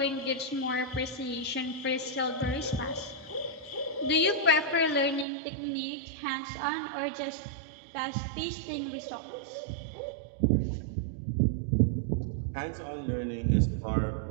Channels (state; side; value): drops out; left; at 5.2 s